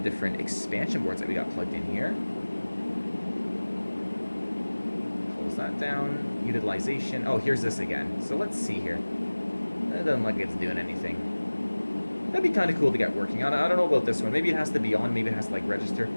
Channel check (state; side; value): inverted; both; correlation -1.00